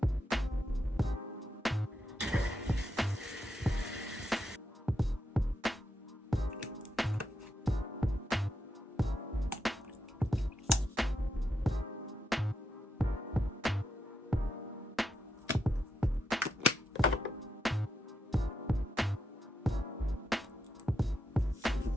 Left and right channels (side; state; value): both; normal; correlation 0.84